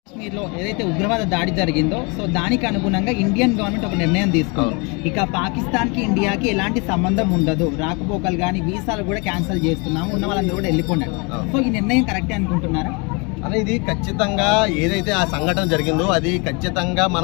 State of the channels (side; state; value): right; quieter; 30.9 dB